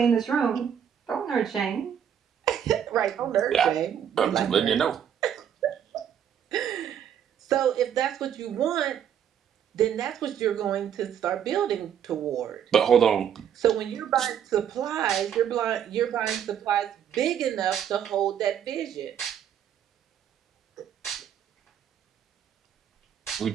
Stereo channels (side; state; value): left; quieter; 9.0 dB